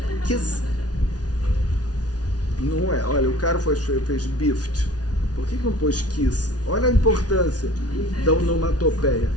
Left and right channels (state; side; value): late; right; 0.69 ms